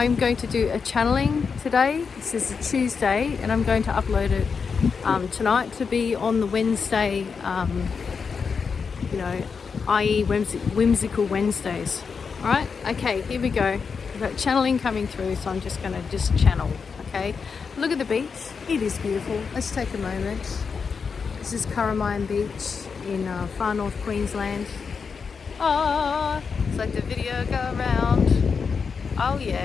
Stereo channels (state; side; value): quieter; right; 5.6 dB